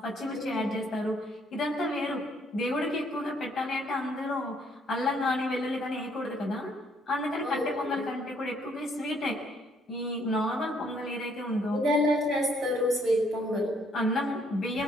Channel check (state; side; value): normal; both; correlation 0.67